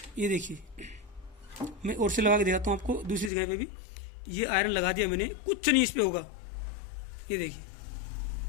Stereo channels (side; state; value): right; drops out; at 3.3 s